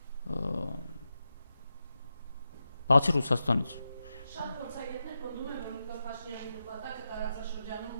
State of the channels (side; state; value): both; inverted; correlation -0.89